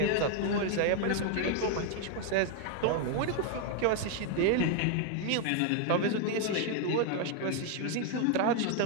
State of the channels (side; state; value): both; different; correlation 0.01